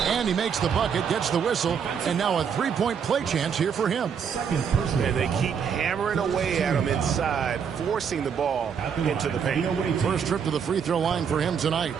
And he makes the bucket, gets the whistle, and now a 3-point play chance here for him. And they keep hammering away at him inside, forcing the ball into the paint. First trip to the free throw line for him tonight.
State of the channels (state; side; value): quieter; left; 7.1 dB